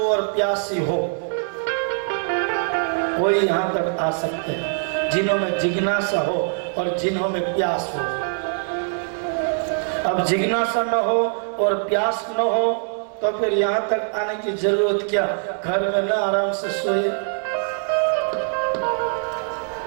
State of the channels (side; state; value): left; silent; digital silence